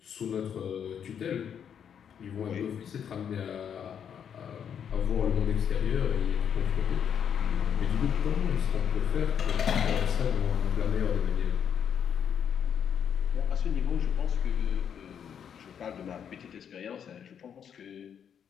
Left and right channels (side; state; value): right; quieter; 8.2 dB